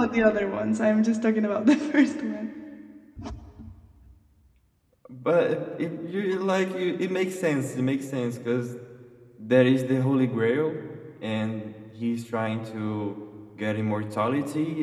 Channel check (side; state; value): both; identical; correlation 1.00